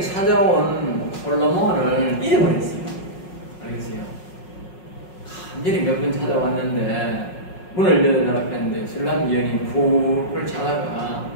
찾아온 솔로몬을 잃어버렸어요. 알겠어요? 간절히 몇 번 찾아왔는데 문을 열어달라고 했는데 술람 여인이 푹을 자다가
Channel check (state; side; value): late; right; 5.5 ms